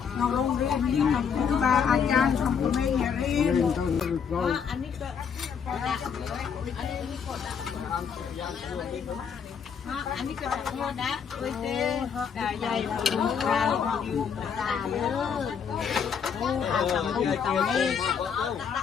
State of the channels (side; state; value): right; quieter; 6.9 dB